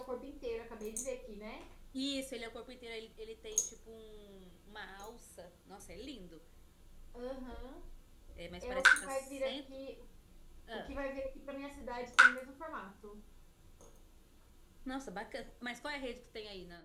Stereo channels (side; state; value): both; identical; correlation 1.00